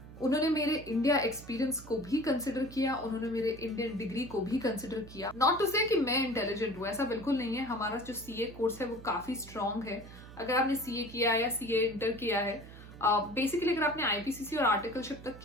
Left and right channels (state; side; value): noise; right; hum, 16 dB below the sound